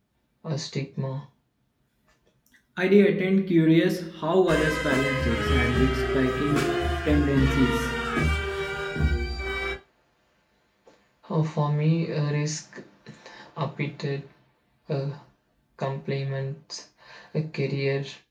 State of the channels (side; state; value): both; identical; correlation 1.00